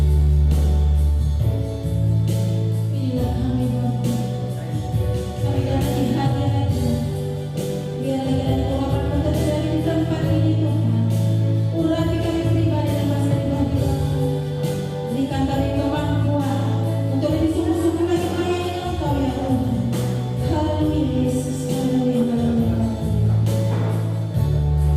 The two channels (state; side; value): identical; both; correlation 1.00